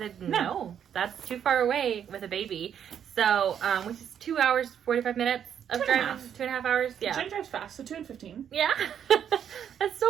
no, that's too far away with a baby. So, which is 2 hours, 45 minutes of driving. 2.5 hours. Yeah. Jen drives fast, so 2 and 15. Yeah. That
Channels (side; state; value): left; quieter; 8.8 dB